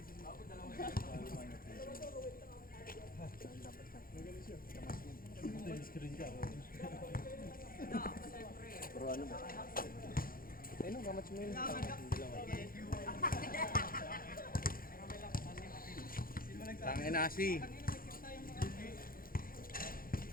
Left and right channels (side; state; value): right; late; 0.42 ms